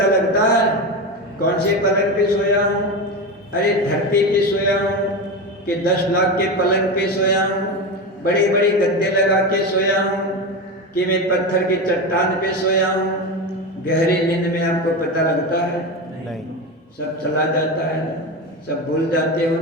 लगता है कौन से पलंग पे सोया हूँ। अरे धरती पे सोया हूँ कि 10 लाख के पलंग पे सोया हूँ, बड़े बड़े गद्दे लगा के सोया हूँ, कि मैं पत्थर के चट्टान पे सोया हूँ। गहरी नींद में आपको पता लगता है? नहीं, सब चला जाता है ना, सब भूल जाते हो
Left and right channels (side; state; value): both; normal; correlation 0.20